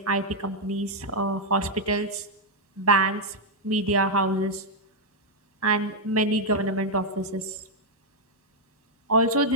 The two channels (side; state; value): both; normal; correlation -0.02